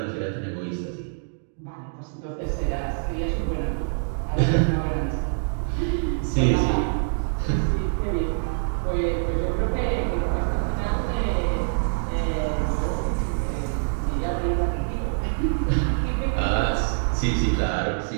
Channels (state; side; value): silent; left; digital silence